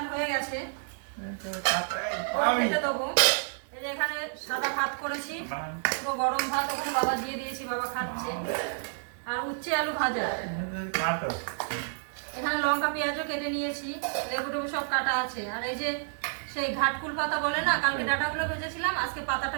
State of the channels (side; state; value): left; silent; digital silence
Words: হয়ে গেছে, খেতে দেবো। এই যে এখানে সাদা ভাত করেছি, পুরো গরম ভাত, ওখানে বাবা দিয়ে দিয়েছি, বাবা খাচ্ছে। আর উচ্ছে আলু ভাজা, এখানে লঙ্কা পেঁয়াজও কেটে নিয়েছি, লেবু টেবু সব কাটা আছে। আর এই যে সেই ঘাটকুল পাতা বলে না, কালকে ডাটাগুলো ভেজেছিলাম, আজকে পাতাটা